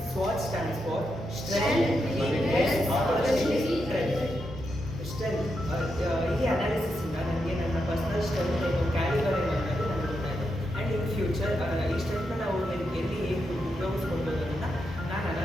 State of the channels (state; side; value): normal; both; correlation 0.84